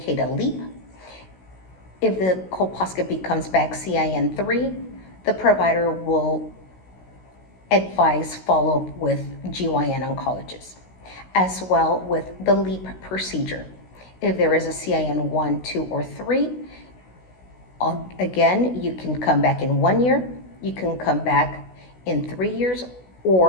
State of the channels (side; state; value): right; late; 16 ms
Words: a LEAP. If the colposcopy comes back CIN3, the provider will advise follow-up with GYN oncologist, as well with the LEAP procedure. If there is a CIN1, 2, or 3, Again, you can come back in 1 year, you can come back in 3 years,